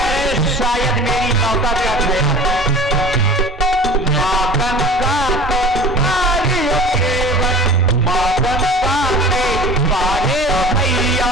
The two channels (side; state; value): both; normal; correlation 0.39